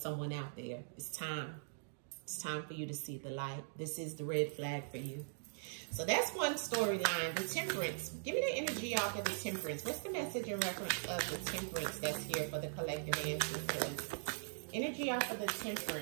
out there. It's time. It's time for you to see the light. This is the red flag for you. So that's one storyline. The Temperance. Give me the energy off of the Temperance. What's the message in reference of the Temperance that's here for the collective ancestors? Energy off of the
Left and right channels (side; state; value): left; silent; digital silence